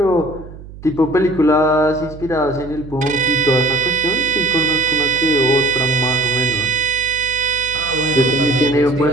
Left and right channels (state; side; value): noise; right; hum, 16 dB below the sound